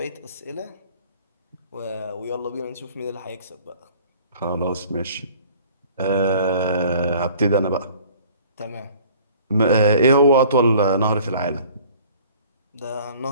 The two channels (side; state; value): both; inverted; correlation -0.51